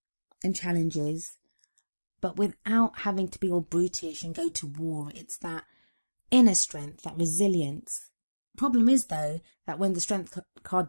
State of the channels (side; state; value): both; inverted; correlation -1.00